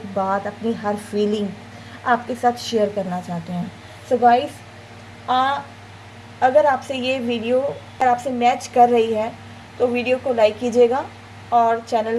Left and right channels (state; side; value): identical; both; correlation 1.00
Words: बात, अपनी हर फीलिंग आपके साथ शेयर करना चाहते हैं। सो गाइस, अगर आपसे ये वीडियो अगर आपसे मैच कर रही है तो वीडियो को लाइक कीजिएगा और चैनल